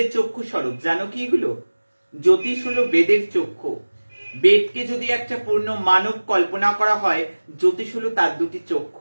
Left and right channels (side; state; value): both; inverted; correlation -1.00